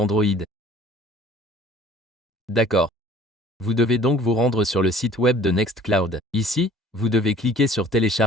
D'accord. Vous devez donc vous rendre sur le site web de Nextcloud. Ici, vous devez cliquer sur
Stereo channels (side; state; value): both; normal; correlation 0.51